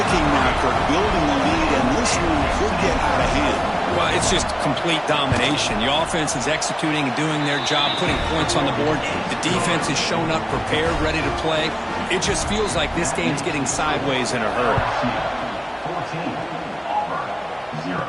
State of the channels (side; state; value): both; identical; correlation 1.00